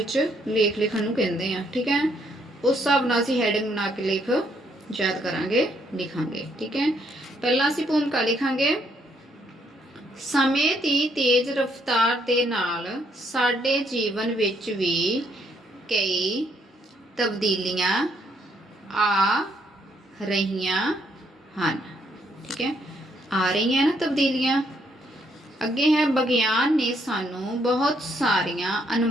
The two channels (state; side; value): normal; both; correlation 0.71